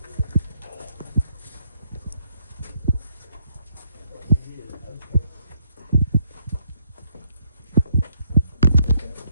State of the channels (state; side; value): inverted; both; correlation -0.73